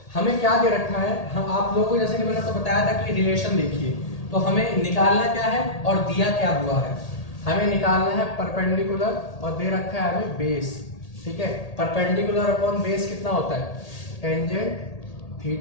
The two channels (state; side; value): late; right; 1.8 ms